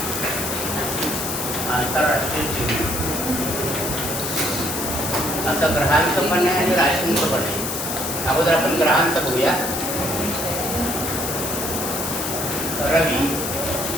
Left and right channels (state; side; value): noise; left; hiss, 3 dB below the sound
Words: आंतरराष्ट्रीय चिन्ह असं ग्रहांचं पण आहे आणि राशींचं पण आहे. अगोदर आपण ग्रहांचं बघूया. रवी,